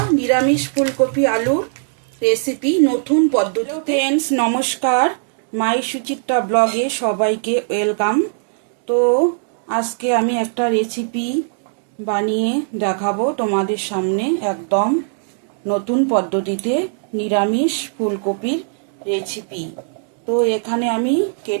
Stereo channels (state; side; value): silent; left; digital silence